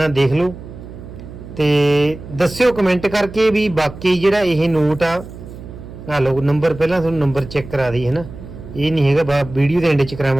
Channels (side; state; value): right; noise; hum, 14 dB below the sound